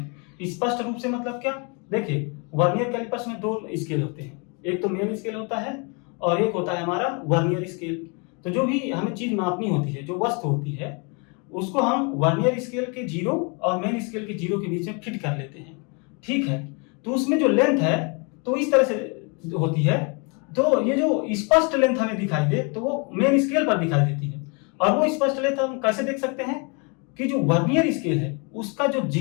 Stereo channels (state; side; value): quieter; right; 33.7 dB